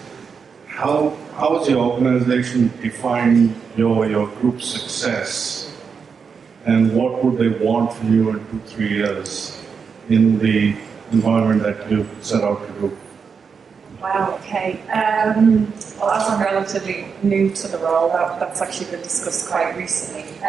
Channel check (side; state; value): left; quieter; 5.9 dB